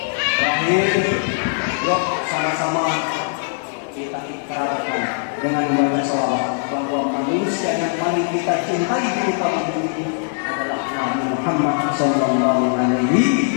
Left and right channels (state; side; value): silent; right; digital silence